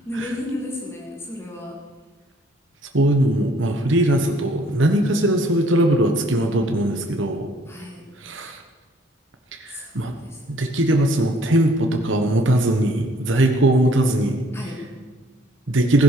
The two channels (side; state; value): both; normal; correlation 0.60